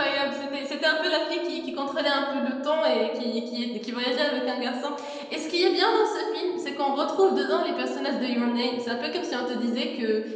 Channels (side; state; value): both; identical; correlation 1.00